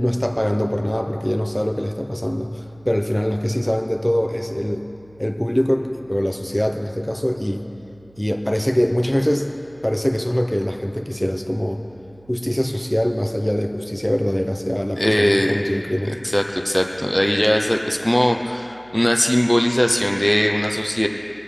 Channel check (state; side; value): noise; right; hum, 28 dB below the sound